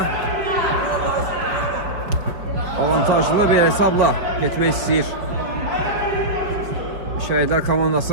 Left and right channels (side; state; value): left; late; 4.7 ms